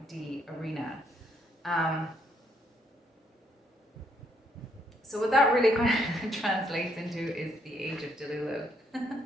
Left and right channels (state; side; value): normal; both; correlation 0.72